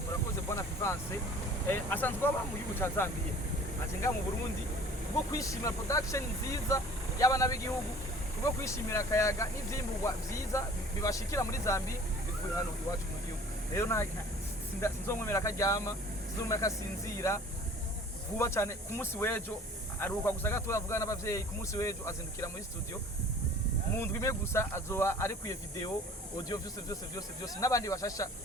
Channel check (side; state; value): both; normal; correlation 0.48